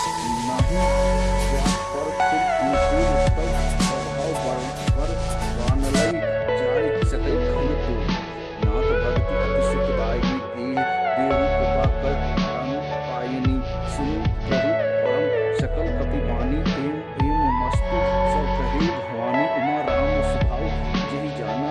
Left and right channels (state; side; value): identical; both; correlation 1.00